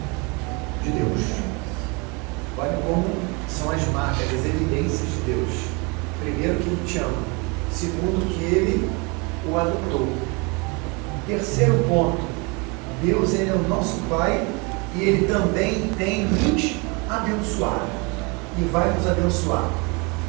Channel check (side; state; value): left; quieter; 29.8 dB